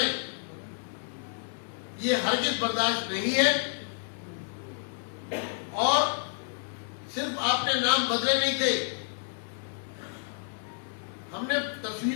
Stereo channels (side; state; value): right; silent; digital silence